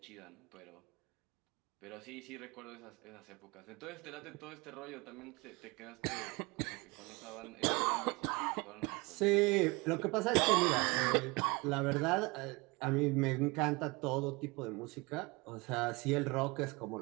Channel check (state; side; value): quieter; left; 25.6 dB